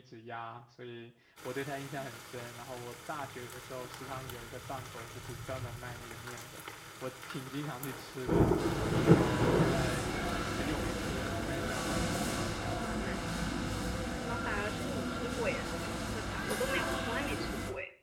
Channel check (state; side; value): identical; both; correlation 1.00